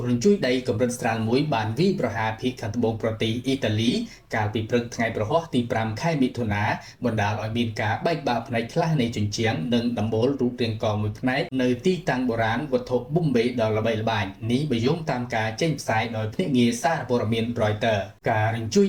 រញ្ជួយដីកម្រិតស្រាលមួយបានវាយប្រហារភាគខាងត្បូងប្រទេសអ៊ីតាលីកាលពីព្រឹកថ្ងៃប្រហ័សទី5ខែមិថុនាបណ្ដាលឲ្យមានការបែកបាក់ផ្នែកខ្លះនៃជញ្ជាំងនិងដំបូលរូបរាងកមួយផ្នែកនៅទីតាំងបុរាណវត្ថុប៊ុំបេដ៏ល្បីល្បាញនេះបើយោងតាមការចេញផ្សាយដោយភ្នាក់ងារសារព័ត៌មាន Reuters ការរញ្ជួយ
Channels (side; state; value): both; identical; correlation 1.00